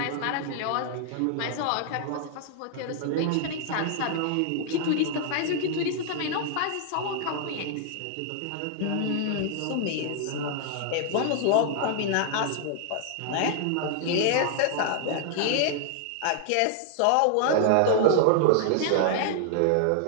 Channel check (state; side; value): different; both; correlation -0.01